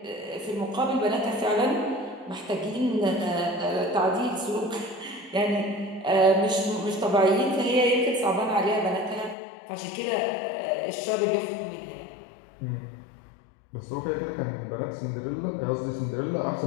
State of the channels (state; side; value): drops out; right; at 9.3 s